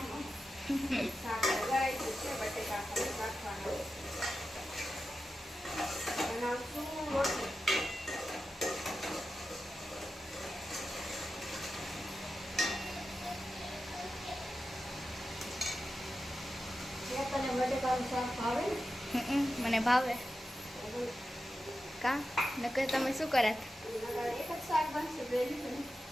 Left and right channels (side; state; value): both; normal; correlation 0.91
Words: શાક વઘારાઈ ગયું છે, બટેકા ખાલી રાખવાના. બનાવશું રોટલી. તને બટેકાનું શાક ભાવે ને? મને ભાવે. કા નકર તમે શું કરત? એક જ શાક બનશે બેલી ને.